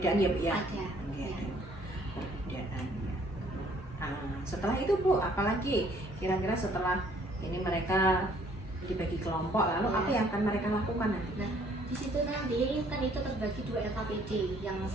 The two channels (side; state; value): both; normal; correlation 0.61